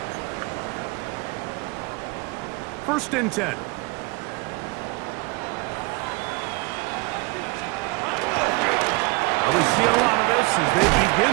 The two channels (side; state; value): left; quieter; 26.7 dB